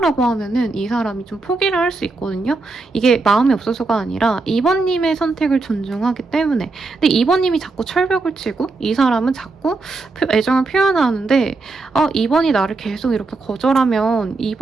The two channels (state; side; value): quieter; left; 3.6 dB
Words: 하면은 이 사람이 좀 포기를 할 수 있거든요. 이게 마음이 없어서가 아니라 이번님의 선택을 존중하기 때문에. 근데 이번님이 자꾸 철벽을 치고 이 사람은 자꾸 애정을 표현하는데 이번이 나를 계속 이렇게 거절하면